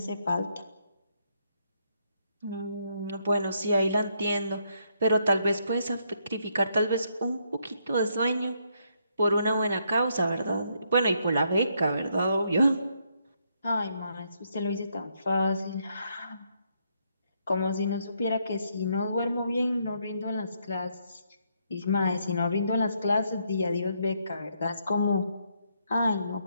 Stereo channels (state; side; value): inverted; both; correlation -0.74